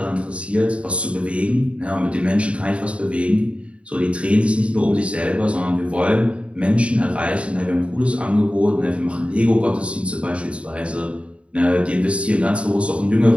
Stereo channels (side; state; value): left; late; 0.061 ms